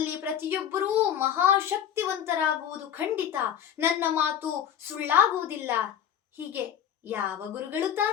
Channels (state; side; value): quieter; right; 9.5 dB